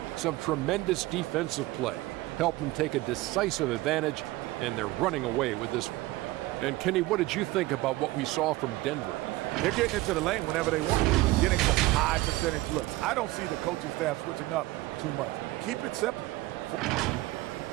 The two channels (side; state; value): left; quieter; 18.9 dB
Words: some tremendous defensive play helped them take a decisive advantage, and they're running away with this one. And Kenny, what did you think about what we saw from Denver? They're getting into the lane whenever they want, getting some high percentage looks. I don't see the coaching staff switching up too much. Keep it simple.